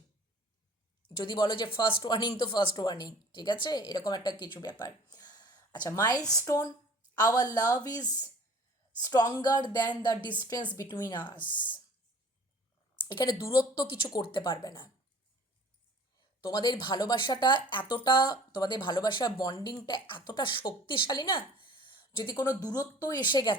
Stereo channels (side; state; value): both; normal; correlation 0.49